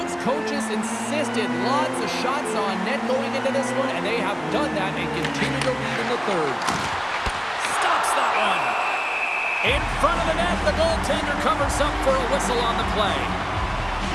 coaches insisted lots of shots on net going into this one, and they have done that and continue to lead in the third. Stops that one. In front of the net, the goaltender covers up for a whistle on the play.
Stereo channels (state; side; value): identical; both; correlation 1.00